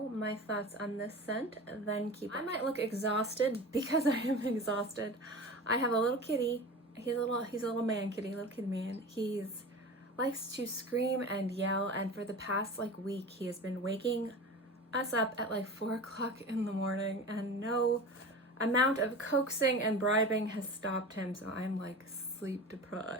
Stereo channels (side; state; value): both; normal; correlation 0.33